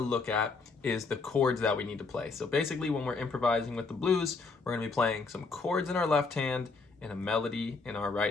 at is the chords that we need to play. So basically, when we're improvising with the blues, we're going to be playing some chords in our left hand and a melody in our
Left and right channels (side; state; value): right; quieter; 4.2 dB